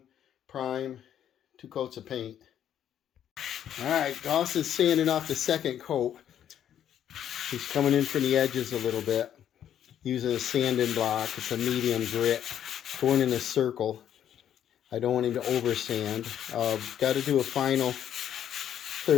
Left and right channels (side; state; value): right; quieter; 10.1 dB